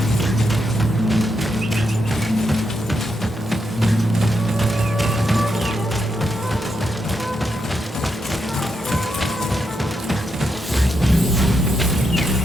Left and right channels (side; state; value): both; normal; correlation 0.82